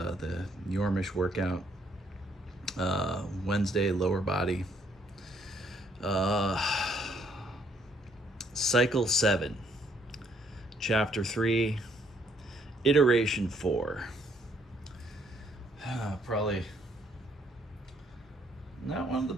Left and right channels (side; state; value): both; normal; correlation 0.68